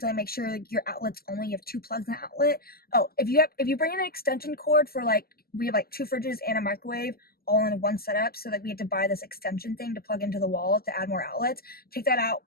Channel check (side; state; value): right; late; 0.45 ms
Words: make sure like, your outlets only have 2 plugs in the outlet. Oh, if you bring in an extension cord for like, we have like 2 fridges and a microwave all in one setup, so that we had to buy this extension thing to plug into the wall to add more outlets. Take that out